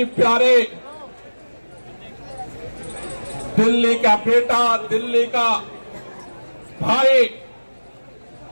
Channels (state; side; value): inverted; both; correlation -1.00